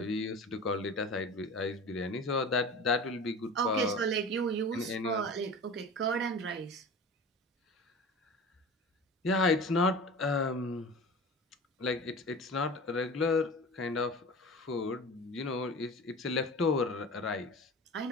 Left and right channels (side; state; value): both; normal; correlation 0.35